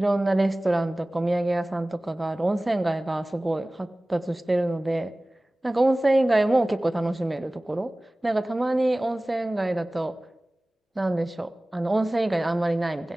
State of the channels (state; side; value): normal; both; correlation 0.98